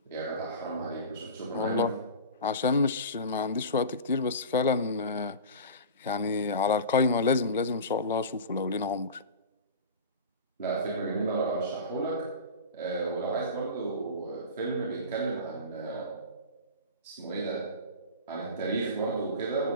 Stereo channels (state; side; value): inverted; both; correlation -0.32